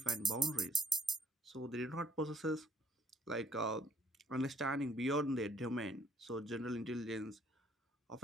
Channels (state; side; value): normal; both; correlation 0.60